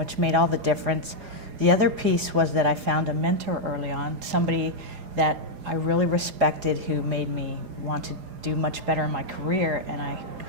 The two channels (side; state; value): left; late; 4.8 ms